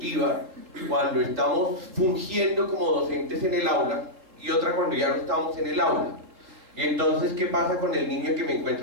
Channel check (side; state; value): left; late; 3.9 ms